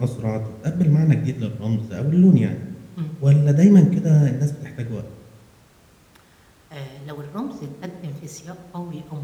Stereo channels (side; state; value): both; identical; correlation 1.00